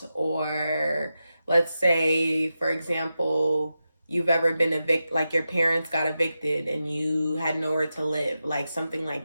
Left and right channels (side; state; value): both; inverted; correlation -0.90